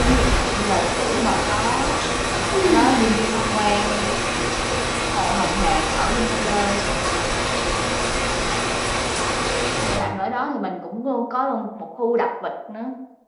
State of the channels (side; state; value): both; identical; correlation 1.00